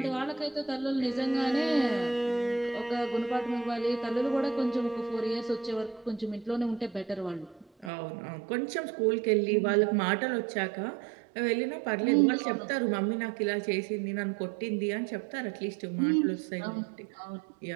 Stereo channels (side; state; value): left; drops out; at 7.9 s